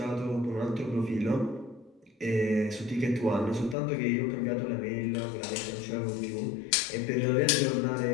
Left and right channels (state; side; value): drops out; right; at 3.8 s